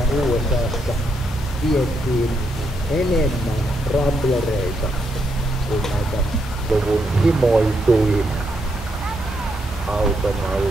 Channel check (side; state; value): both; normal; correlation 0.78